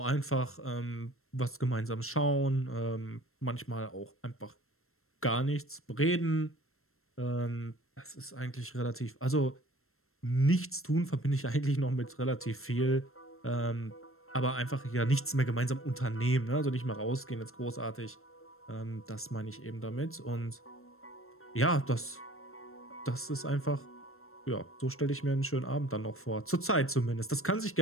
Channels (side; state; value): right; late; 0.62 ms